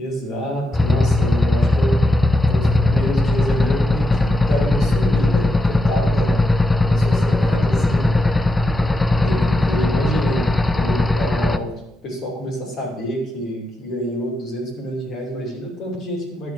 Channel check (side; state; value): both; normal; correlation 0.85